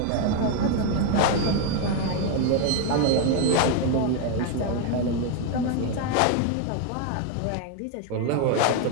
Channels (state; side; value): different; both; correlation 0.01